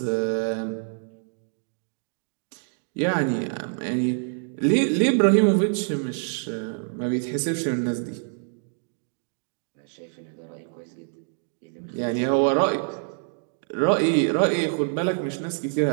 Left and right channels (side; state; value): left; silent; 61 dB below the other